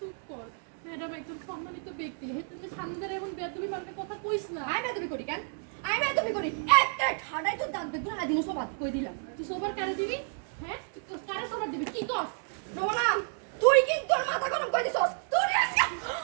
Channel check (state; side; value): silent; left; 57 dB below the other